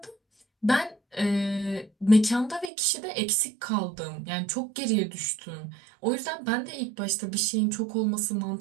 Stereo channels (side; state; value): left; drops out; at 2.7 s